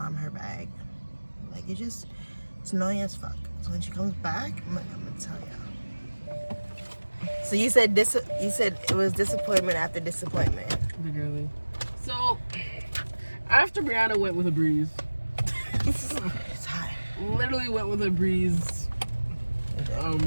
bag. Like, it's annoying as fuck. So when she comes back, I'm gonna tell you. So you said it was disappointment after disappointment. Literally. So after Brianna went with a breeze, It's hot. literally went with a breeze,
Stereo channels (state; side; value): inverted; both; correlation -1.00